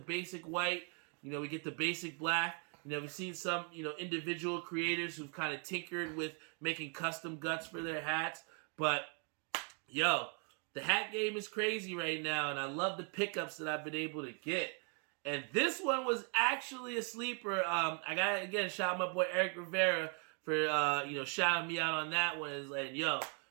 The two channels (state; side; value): quieter; left; 38.4 dB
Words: white, we get the basic black. We've seen some, individual creators who've kind of tinkered with making custom guts for their hats. But, the hat game is crazy right now, and I love the pickups that I've been able to get. And this one was actually a sleeper. I got to, again, shout out my boy Eric Rivera for, shouting me out on that one. And like,